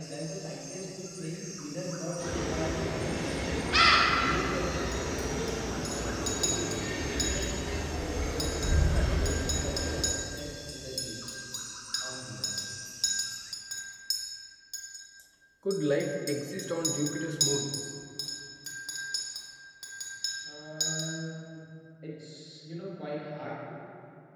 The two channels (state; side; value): identical; both; correlation 1.00